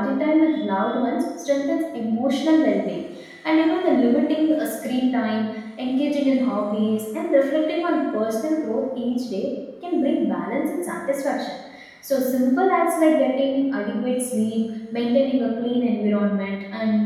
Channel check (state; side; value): identical; both; correlation 1.00